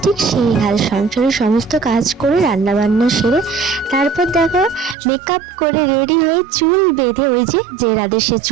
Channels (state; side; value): drops out; left; at 5.0 s